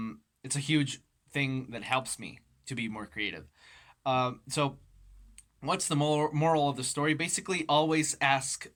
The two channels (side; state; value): both; identical; correlation 1.00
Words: a huge thing that helps me to be more creative. So what's the moral of the story? Basically, always ask